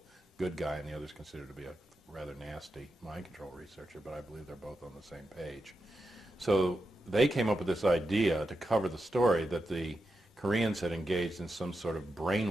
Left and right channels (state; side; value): normal; both; correlation 0.88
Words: good guy and the other's considered to be a rather nasty mind control researcher, but I believe they're both on the same page. So they came up with this idea to cover the story that the Koreans had engaged in some sort of